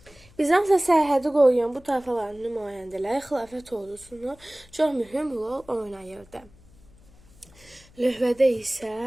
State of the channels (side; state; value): left; noise; hum, 26 dB below the sound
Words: Bizansa sərhədi qoruyan bu tayfaların nümayəndələri xilafət ordusunu çox mühüm rol oynayırdı. Lövhədə isə